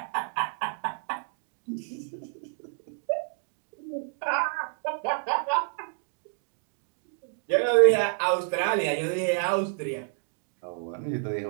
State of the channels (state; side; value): silent; left; digital silence